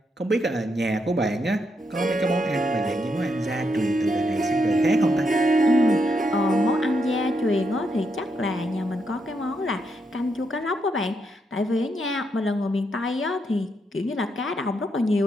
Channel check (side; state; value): both; normal; correlation 0.80